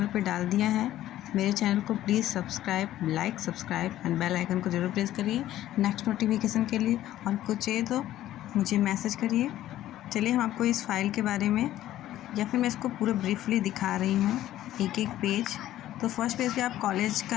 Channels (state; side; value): quieter; right; 13.5 dB